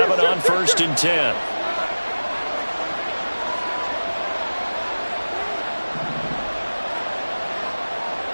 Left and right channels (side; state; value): both; inverted; correlation -1.00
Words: on 1st and 10.